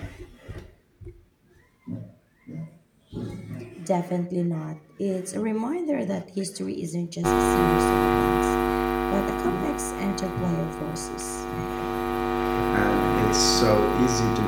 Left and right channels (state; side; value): identical; both; correlation 1.00